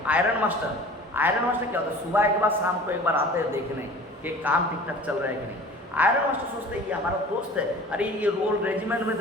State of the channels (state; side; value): normal; both; correlation 0.43